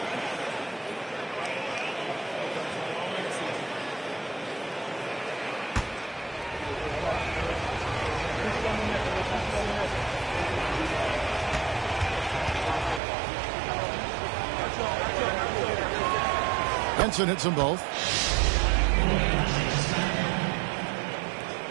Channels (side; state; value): left; drops out; at 13.0 s